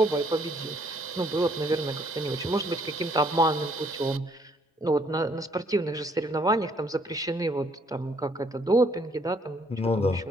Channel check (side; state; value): both; normal; correlation 0.66